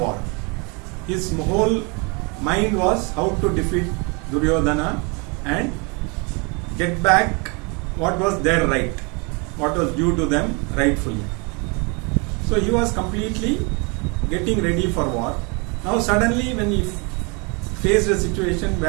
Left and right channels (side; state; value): left; quieter; 31.7 dB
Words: His whole mind was how to defeat Duryodhana and get back what was their right, what was due to them rightfully. So he was completely getting ready for war. Now suddenly when he faced a situation